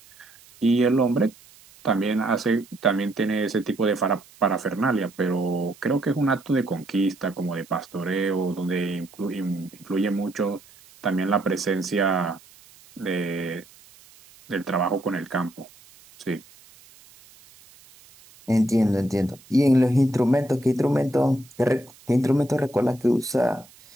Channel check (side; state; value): right; noise; hiss, 25 dB below the sound